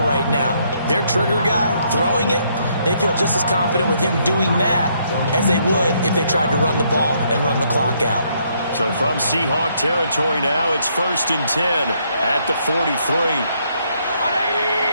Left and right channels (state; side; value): inverted; both; correlation -0.72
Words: right now. Their trigger guy, throwing it, they feel just as confident with him doing that as they would if they tried to run the ball and run the clock out. So from Seahawk territory now, it's 1st and 10 at the 43.